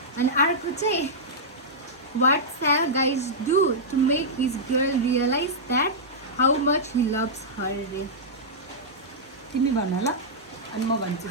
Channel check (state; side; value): normal; both; correlation -0.11